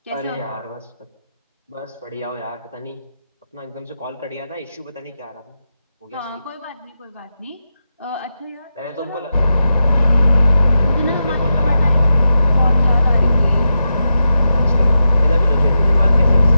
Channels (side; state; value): both; inverted; correlation -0.88